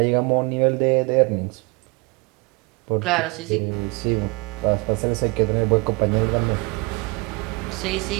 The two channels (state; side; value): quieter; left; 27.6 dB